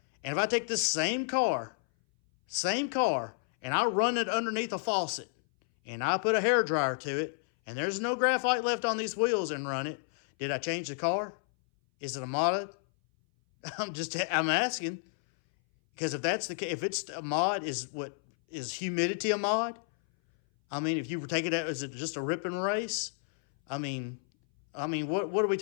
And if I take this same car, and I run it underneath a faucet, and I put a hairdryer to it, and there's no graphite left on these wheels and run it, did I change the car? Is it a mod? I'm asking. Because if that's the case, if it's a mod, is humidity a mod? I mean, if you were taking it, is it just a rip and race? I mean, what are we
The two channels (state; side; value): silent; right; 57 dB below the other